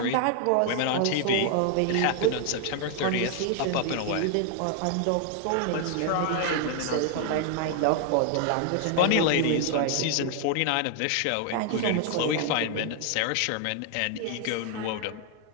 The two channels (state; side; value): different; both; correlation 0.00